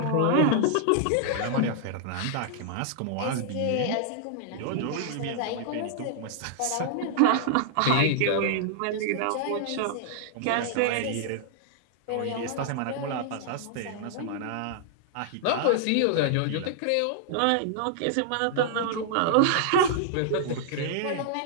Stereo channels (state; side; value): different; both; correlation -0.01